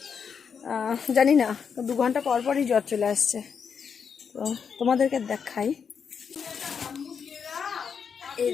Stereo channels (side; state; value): right; quieter; 6.6 dB